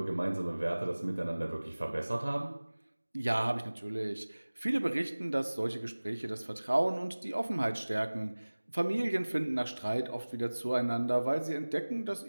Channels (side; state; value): both; inverted; correlation -1.00